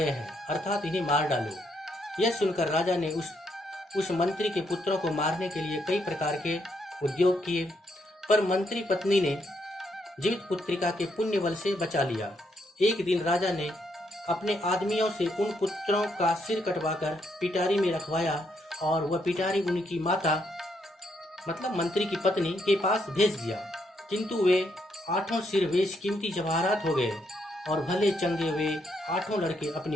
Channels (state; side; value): normal; both; correlation 0.76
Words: हैं, अर्थात इन्हें मार डालो। यह सुनकर राजा ने उस मंत्री के पुत्रों को मारने के लिए कई प्रकार के उद्योग किए, पर मंत्री पत्नी ने जीवित पुत्रिका के पुण्य बल से बचा लिया। एक दिन राजा ने अपने आदमियों से उन पुत्रों का सिर कटवाकर पिटारी में रखवाया और वह पिटारी उनकी माता मतलब मंत्री की पत्नी के पास भेज दिया, किंतु वे 8 सिर बेशकीमती जवाहरात हो गए और भले चंगे वे 8 लड़के